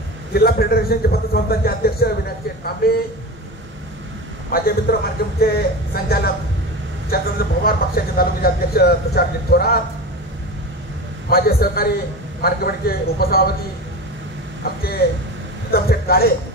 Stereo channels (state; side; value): normal; both; correlation 0.27